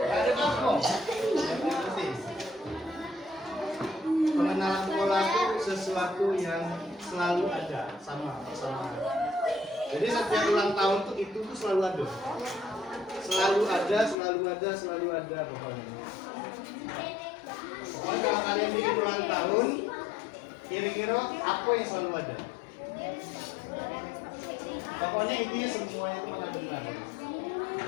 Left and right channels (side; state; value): right; drops out; at 14.2 s